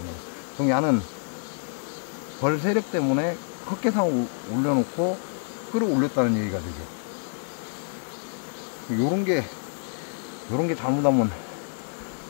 그럼 야는 벌 세력 때문에 헛개상을 올려놓고 끌어올렸다는 얘기가 되죠. 요런 게 잘못하면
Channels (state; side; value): silent; right; digital silence